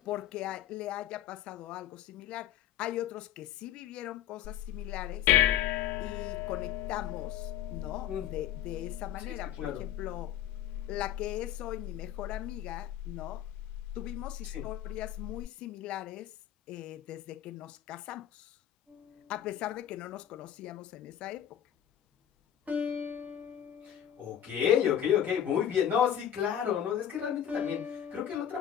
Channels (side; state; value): right; quieter; 10.5 dB